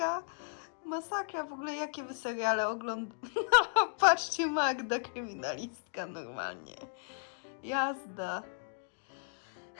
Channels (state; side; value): silent; right; digital silence